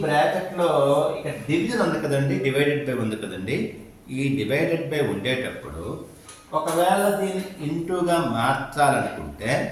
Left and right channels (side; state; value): both; identical; correlation 1.00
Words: బ్రాకెట్లో ఇక్కడ డివిజన్ ఉంది కదండి, డివైడెడ్ బై ఉంది కదండి. ఈ డివైడెడ్ బై ఉండేటప్పుడు ఒకవేళ దీన్ని ఇంటూగా మార్చాలనుకుంటే